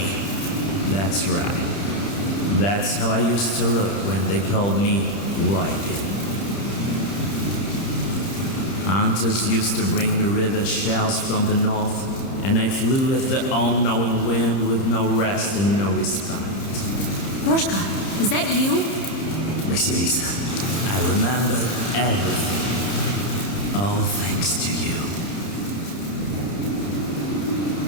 That's right. That's how I used to look when they called me Whitey. Hunters used to bring me river shells from the north, and I flew with the all-knowing wind with no rest and no respite. Morteshka, is that you? Vasilisa, I remembered everything. All thanks to you.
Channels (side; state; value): right; late; 30 ms